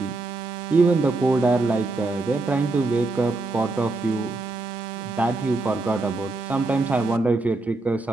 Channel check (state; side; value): quieter; left; 3.3 dB